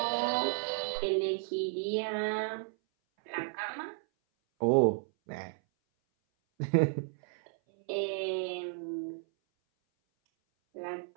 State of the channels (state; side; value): silent; left; 56 dB below the other